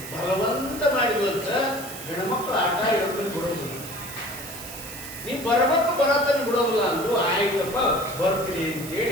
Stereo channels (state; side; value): noise; right; hiss, 12 dB below the sound